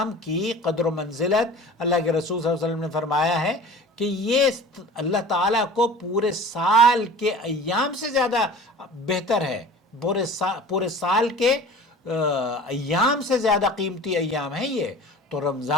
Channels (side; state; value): both; normal; correlation 0.41